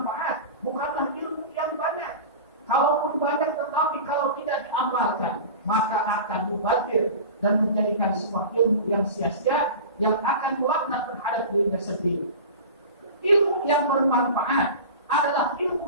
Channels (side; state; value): both; inverted; correlation -0.34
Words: bukanlah ilmu yang banyak. Kalaupun banyak tetapi kalau tidak diamalkan, maka akan mubazir dan menjadikan sebuah ilmu yang sia-sia, yang akan melaknat terhadap dirinya sendiri. Ilmu yang bermanfaat adalah ilmu